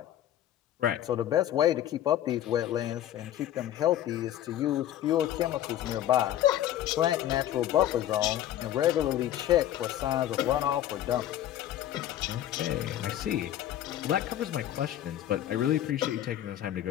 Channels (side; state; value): right; quieter; 12.0 dB